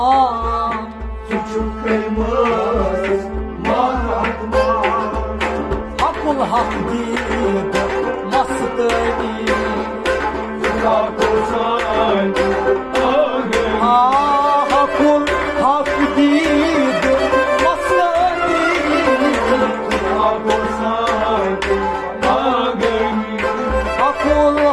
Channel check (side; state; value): both; identical; correlation 1.00